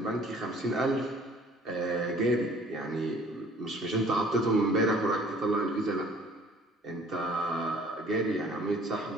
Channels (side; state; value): both; normal; correlation 0.54